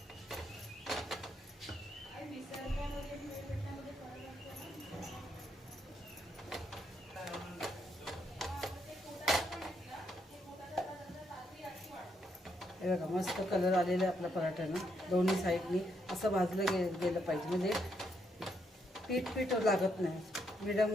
हे बघा मस्त कलर आलेला आहे आपल्या पराठ्यानं. दोन्ही साईडनी असं भाजलं गेलं पाहिजे, म्हणजे पीठ लागत नाही. मिडियम.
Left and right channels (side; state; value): both; normal; correlation 0.77